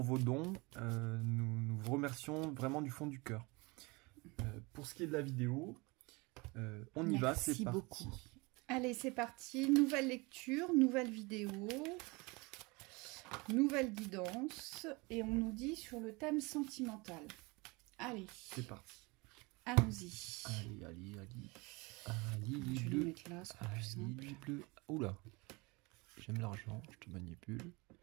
vos dons. Nous vous remercions vraiment du fond du cœur. Pour ce qui est de la vidéo, on y va, c'est parti. Beaucoup. Allez, c'est parti. Nouvelle lecture, nouvelle vidéo, nouvelle guidance. Et on nous dit sur le thème sentimental. Allez. C'est parti. Allons-y. Allez. Je vais le mettre là, ce sera plus simple. Bleu. Oula, j'aime l'argent, je te manipule.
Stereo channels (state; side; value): quieter; left; 26.0 dB